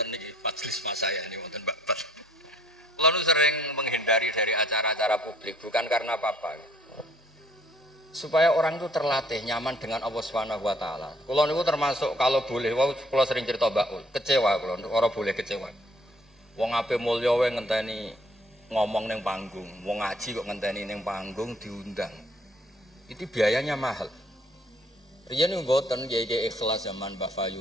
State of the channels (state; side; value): normal; both; correlation 0.61